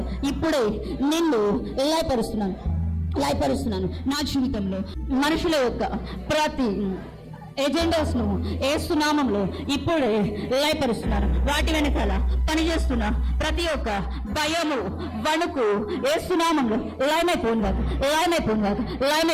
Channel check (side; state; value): both; identical; correlation 1.00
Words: ఇప్పుడే నిన్ను లయపరుస్తున్నాను. నా జీవితంలో మనుషుల యొక్క ప్రతి ఎజెండాస్ ను యేసునామంలో ఇప్పుడే లయపరుస్తున్నారు. వాటి వెనకాల పనిచేస్తున్న ప్రతి ఒక్క భయము, వణుకు యేసునామంలో లయమైపోయిందాక.